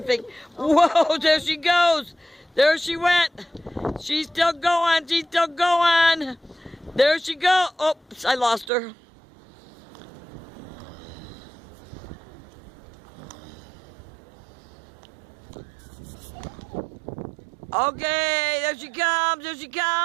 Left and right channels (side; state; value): left; drops out; at 8.7 s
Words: Whoa, there she goes. There she went. She's still going. There she goes. Oops, I lost her. Okay, there she